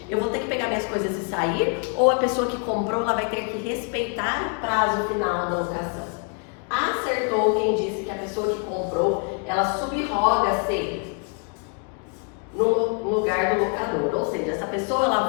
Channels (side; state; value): right; quieter; 39.8 dB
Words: Eu vou ter que pegar minhas coisas e sair, ou a pessoa que comprou, ela vai ter que respeitar o prazo final da locação? Acertou quem disse que a pessoa que comprou, ela subroga-se no lugar do locador, ou seja, essa pessoa